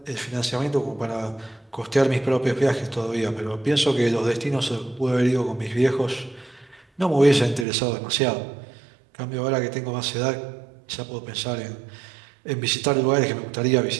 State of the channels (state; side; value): drops out; left; at 7.7 s